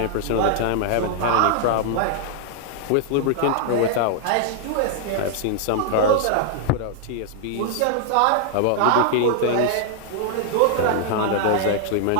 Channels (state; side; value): different; both; correlation 0.00